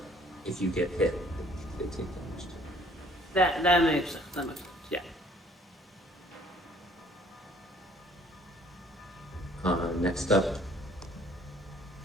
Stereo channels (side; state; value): both; normal; correlation 0.58